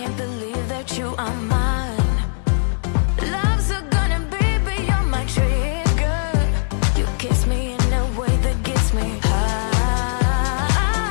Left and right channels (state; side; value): silent; right; digital silence